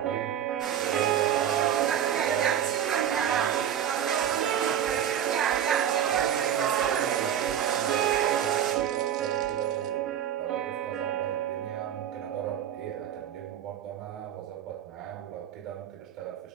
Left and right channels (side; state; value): left; quieter; 9.7 dB